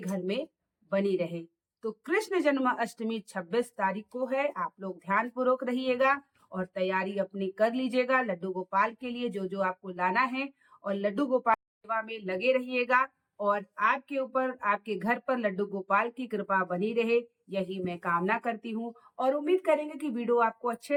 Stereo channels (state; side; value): identical; both; correlation 1.00